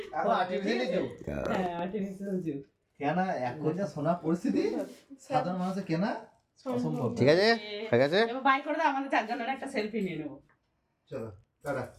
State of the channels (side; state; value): both; identical; correlation 1.00